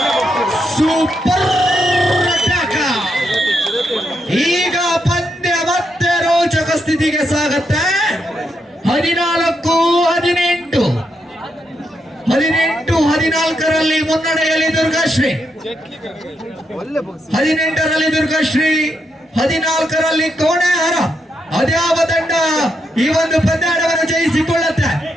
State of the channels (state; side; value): normal; both; correlation 0.81